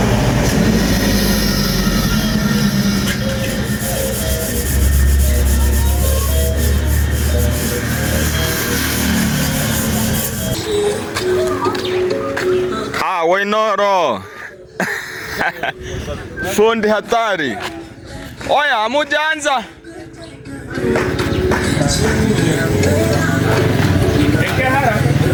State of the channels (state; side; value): identical; both; correlation 1.00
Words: Wainoro. Fundi hatari. Oya, hamujaanza.